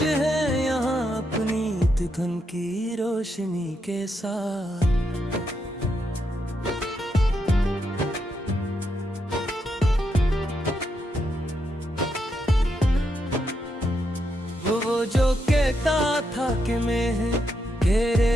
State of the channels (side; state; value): both; normal; correlation 0.81